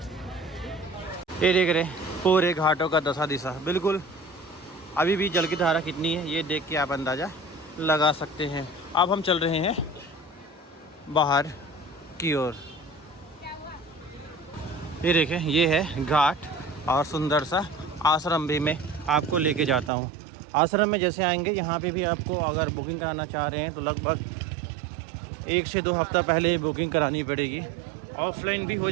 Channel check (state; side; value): drops out; left; at 19.9 s